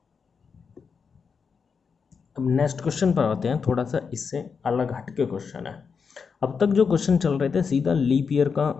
अब नेक्स्ट क्वेश्चन पर आते हैं, थोड़ा सा इससे अलग हटके क्वेश्चन है। अब तक जो क्वेश्चन चल रहे थे सीधा लीप ईयर का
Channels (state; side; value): quieter; right; 5.8 dB